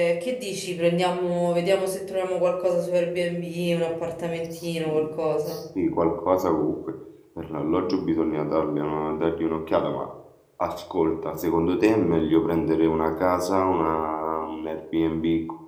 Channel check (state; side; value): identical; both; correlation 1.00